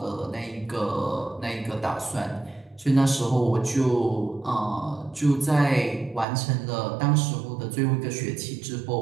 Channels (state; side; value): drops out; left; at 6.2 s